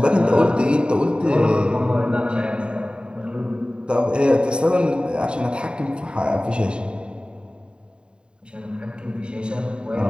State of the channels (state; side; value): late; left; 0.052 ms